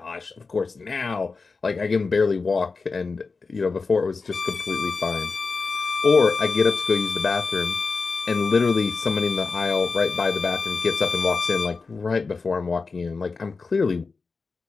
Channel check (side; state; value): right; quieter; 4.4 dB